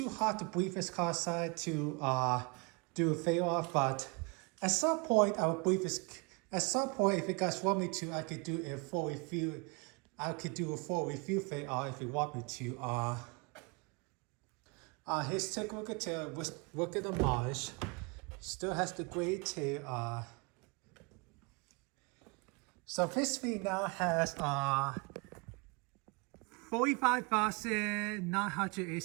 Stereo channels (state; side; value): quieter; left; 30.4 dB